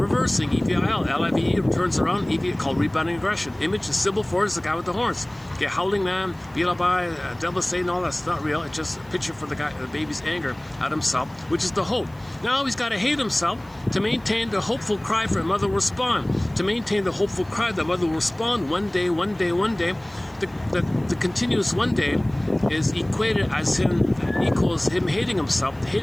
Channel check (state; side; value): noise; right; hiss, 29 dB below the sound